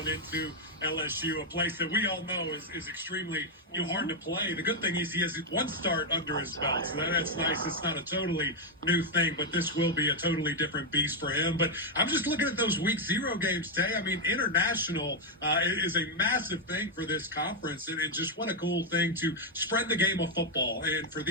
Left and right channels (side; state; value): both; normal; correlation 0.00